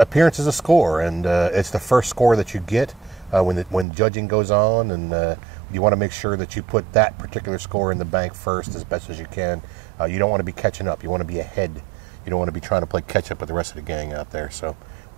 score, and it's the first score that you get when judging goes on, and you want to make sure that you put that particular score in the bank first as best as you can. You don't want to be catching up. You want to be ahead. You don't want to be trying to play catch up with the rest of the gang out there. So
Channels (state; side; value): drops out; left; at 3.9 s